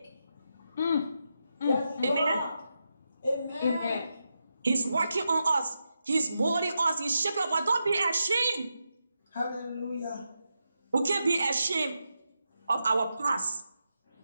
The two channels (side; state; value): both; inverted; correlation -0.87